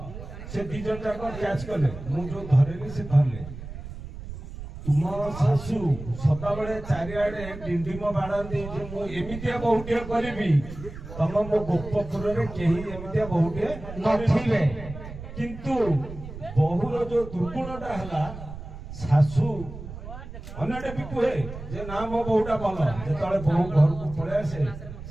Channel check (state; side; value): noise; right; rumble, 11 dB below the sound